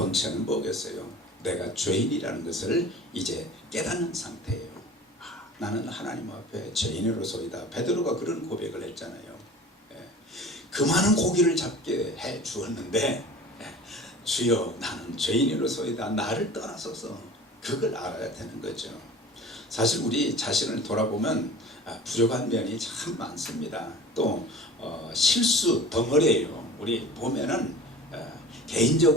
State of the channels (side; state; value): both; normal; correlation 0.41